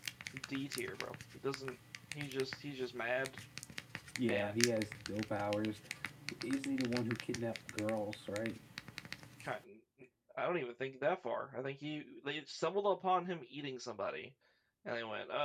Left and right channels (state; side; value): identical; both; correlation 1.00